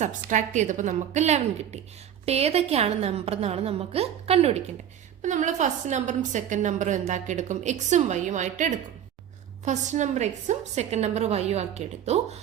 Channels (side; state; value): left; quieter; 9.8 dB